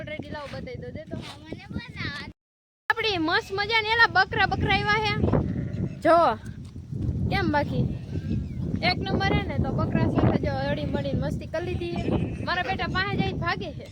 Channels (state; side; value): identical; both; correlation 1.00